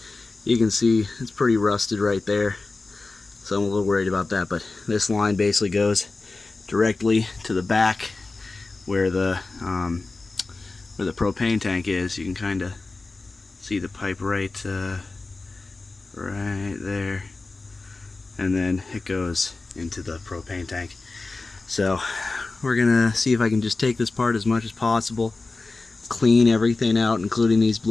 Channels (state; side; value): quieter; right; 3.6 dB